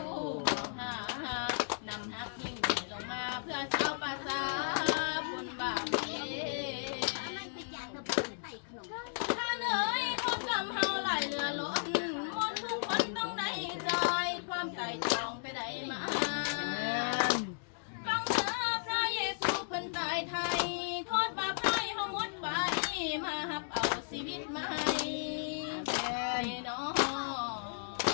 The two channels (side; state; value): right; silent; digital silence